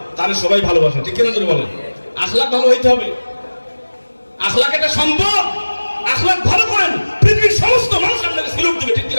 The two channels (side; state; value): both; inverted; correlation -1.00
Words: তারে সবাই ভালোবাসে, ঠিক কিনা যদি বলেন? আখলাক ভালো হইতে হবে, আখলাক এটা সম্পদ। আখলাক ভালো করেন, পৃথিবীর সমস্ত মানুষ আপনাকে সিলুট দিবে, ঠিক